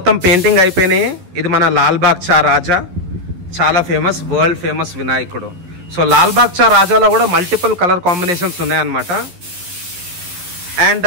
పెయింటింగ్ అయిపోయినాయి. ఇది మన లాల్బాగ్ చా రాజా, చాలా ఫేమస్, వరల్డ్ ఫేమస్ వినాయకుడు. సో లాల్బాగ్ చా రాజాలో కూడా మల్టిపుల్ కలర్ కాంబినేషన్స్ ఉన్నాయన్నమాట. అండ్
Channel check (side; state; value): left; late; 11 ms